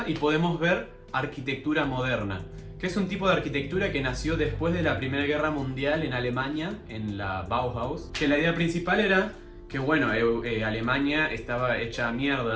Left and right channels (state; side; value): identical; both; correlation 1.00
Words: y podemos ver arquitectura moderna, que es un tipo de arquitectura que nació después de la Primera Guerra Mundial en Alemania, en la Bauhaus, que la idea principal era que bueno, Alemania estaba hecha